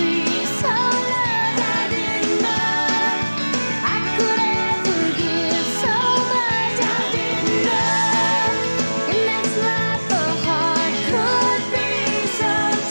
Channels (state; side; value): inverted; both; correlation -1.00